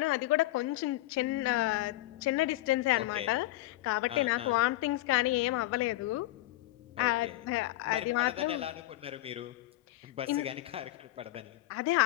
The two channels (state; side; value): quieter; right; 17.4 dB